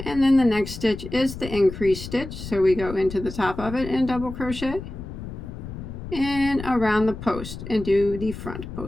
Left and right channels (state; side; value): noise; left; rumble, 10 dB below the sound